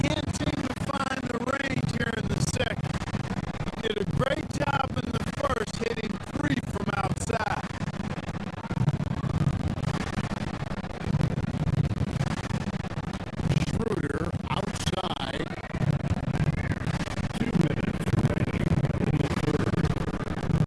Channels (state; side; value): identical; both; correlation 1.00